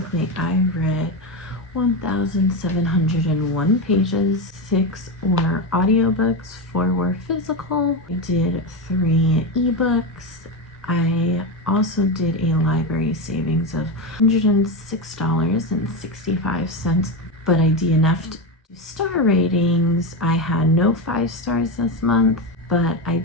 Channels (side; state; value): both; normal; correlation 0.14